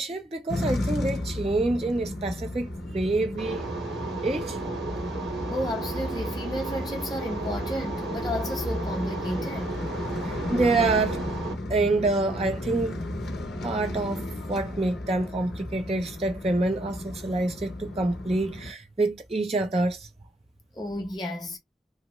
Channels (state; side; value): normal; both; correlation 0.71